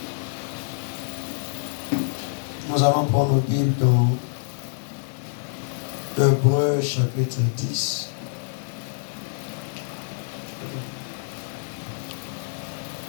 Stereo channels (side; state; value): right; silent; 61 dB below the other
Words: Nous allons prendre nos Bibles dans Hébreux chapitre 10.